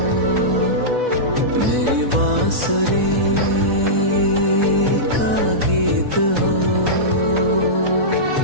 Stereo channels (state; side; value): late; left; 4.1 ms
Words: मेरी बांसुरी का गीत हो।